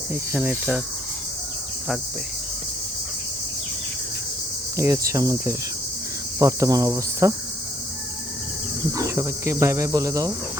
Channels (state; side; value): normal; both; correlation 0.66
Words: এখানে এটা থাকবে। এই হচ্ছে আমাদের বর্তমান অবস্থা। সবাইকে বাই বাই বলে দাও,